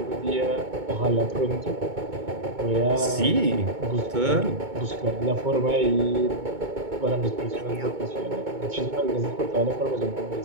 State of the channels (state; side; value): late; left; 2.2 ms